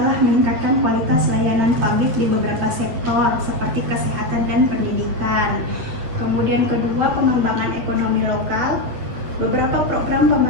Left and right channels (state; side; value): late; left; 8.3 ms